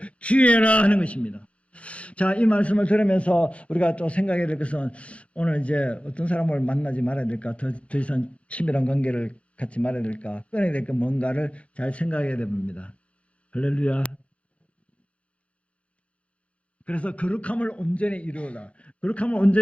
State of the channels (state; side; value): late; right; 0.062 ms